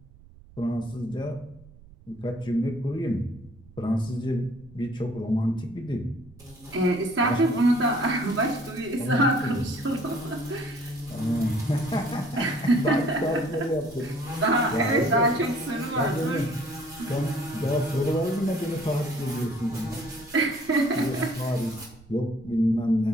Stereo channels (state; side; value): noise; right; rumble, 23 dB below the sound